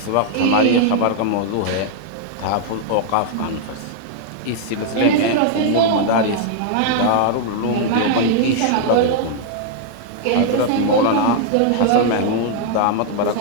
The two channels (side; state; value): both; different; correlation -0.01